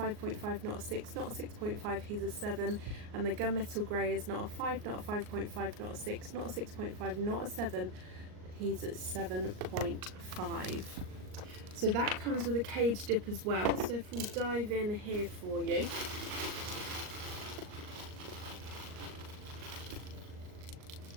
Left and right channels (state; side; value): late; left; 38 ms